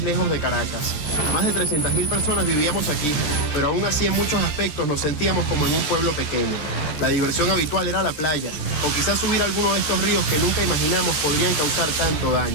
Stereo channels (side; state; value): right; late; 13 ms